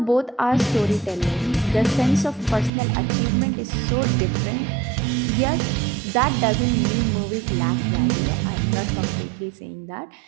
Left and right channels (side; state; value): left; drops out; at 2.7 s